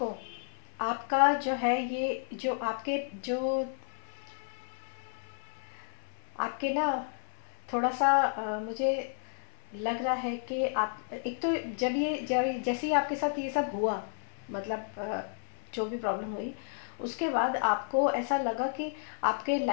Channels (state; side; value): silent; right; 56 dB below the other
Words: आपका जो है ये जो आपके जो आपके ना थोड़ा सा मुझे लग रहा है कि आप एक तो जब जैसे ही आपके साथ ये सब हुआ, मतलब जो भी प्रॉब्लम हुई, उसके बाद आपको ऐसा लगा कि आपके